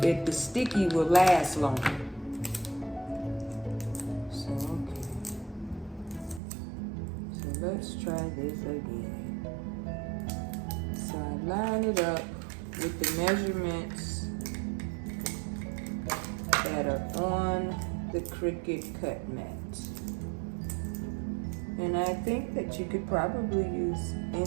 The sticky will last longer. So okay. So let's try this again. So I line it up with the measurements that are on the Cricut cut mat. And I think that you could probably use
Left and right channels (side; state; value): left; drops out; at 6.4 s